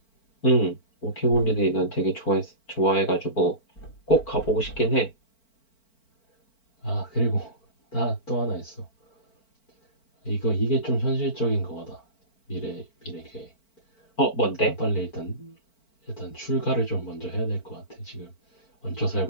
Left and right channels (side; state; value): right; late; 4.5 ms